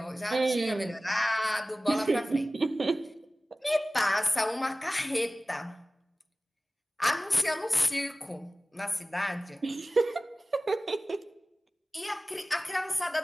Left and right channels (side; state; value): both; normal; correlation 0.97